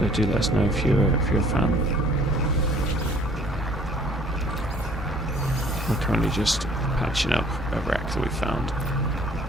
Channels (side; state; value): both; normal; correlation 0.56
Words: do let us know if you're a fan. We're currently just patching up a wreck that we found